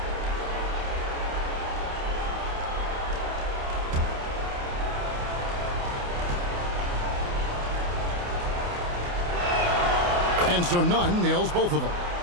And so Nunn nails both of them.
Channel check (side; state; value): left; late; 28 ms